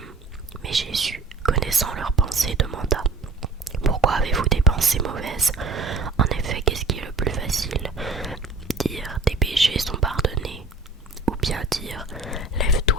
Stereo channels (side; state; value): left; quieter; 3.5 dB